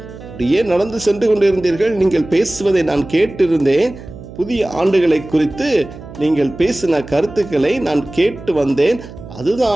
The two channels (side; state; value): right; noise; hum, 15 dB below the sound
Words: அப்படியே நடந்து சென்று கொண்டிருந்தீர்கள், நீங்கள் பேசுவதை நான் கேட்டிருந்தேன், புதிய ஆண்டுகளை குறித்து நீங்கள் பேசின கருத்துக்களை நான் கேட்டு வந்தேன்,